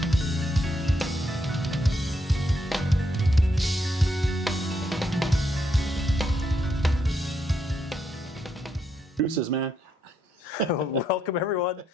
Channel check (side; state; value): both; normal; correlation 0.78